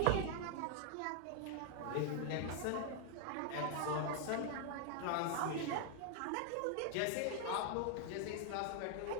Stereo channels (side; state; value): both; different; correlation 0.00